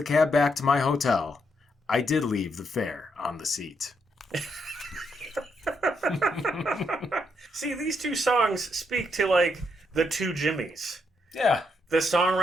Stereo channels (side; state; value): both; normal; correlation 0.77